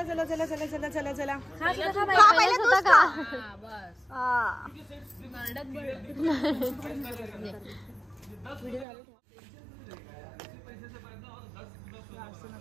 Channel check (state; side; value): drops out; left; at 8.8 s